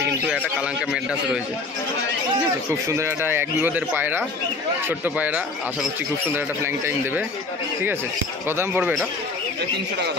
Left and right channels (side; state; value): right; quieter; 3.7 dB